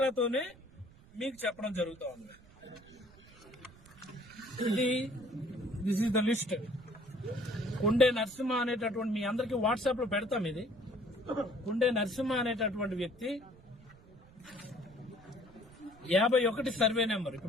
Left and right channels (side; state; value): right; noise; rumble, 24 dB below the sound